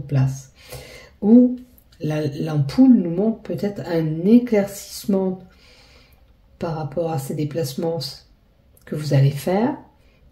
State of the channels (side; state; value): both; identical; correlation 1.00